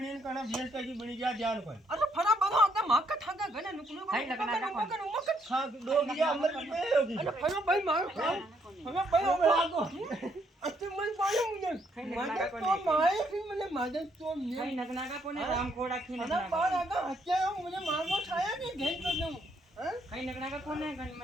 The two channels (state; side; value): normal; both; correlation 0.71